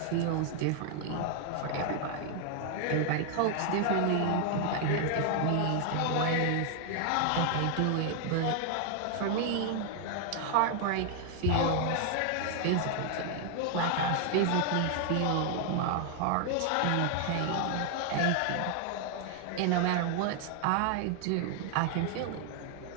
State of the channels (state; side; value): different; both; correlation 0.00